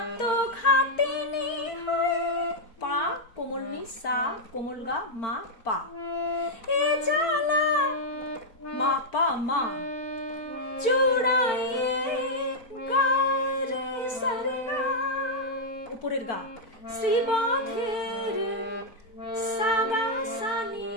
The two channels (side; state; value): right; late; 4.5 ms